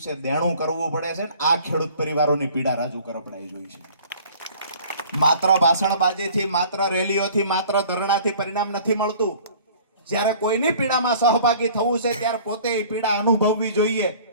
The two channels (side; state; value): both; inverted; correlation -0.50